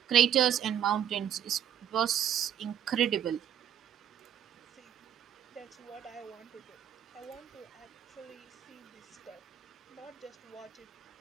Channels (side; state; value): left; quieter; 9.8 dB